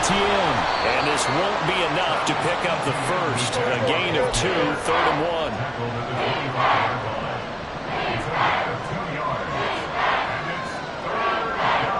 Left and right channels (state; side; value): identical; both; correlation 1.00